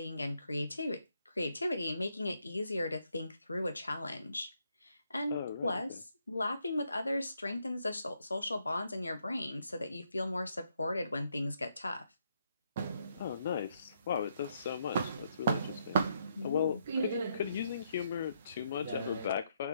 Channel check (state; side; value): inverted; both; correlation -0.76